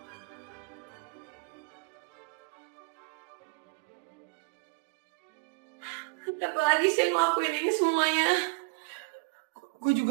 Kenapa lagi sih ngelakuin ini semuanya? Gue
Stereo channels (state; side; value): quieter; left; 30.9 dB